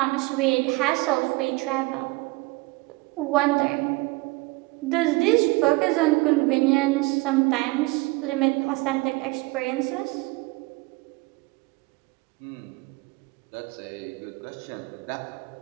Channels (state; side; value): quieter; left; 23.9 dB